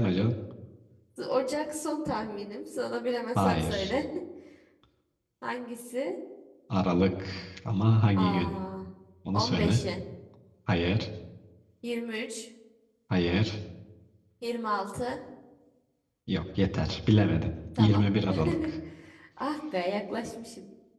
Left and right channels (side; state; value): both; identical; correlation 1.00